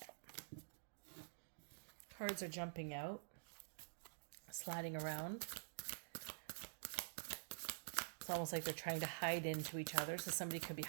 Cards are jumping out, sliding around. It's almost like they're trying to hide into each other. So somebody could be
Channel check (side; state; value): left; silent; digital silence